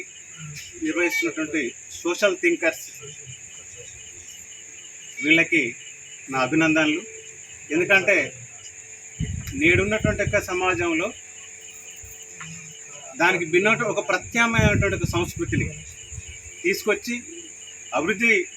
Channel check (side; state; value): both; identical; correlation 1.00